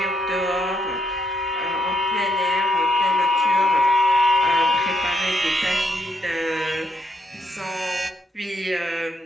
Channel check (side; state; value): both; normal; correlation 0.75